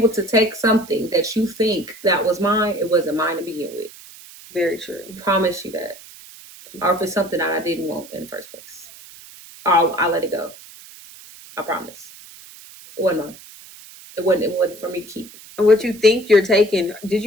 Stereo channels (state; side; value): noise; right; hiss, 19 dB below the sound